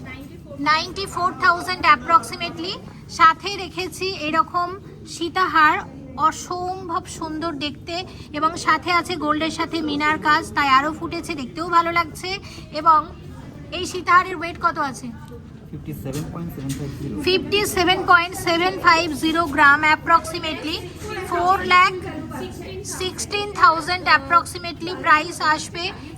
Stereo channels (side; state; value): both; identical; correlation 1.00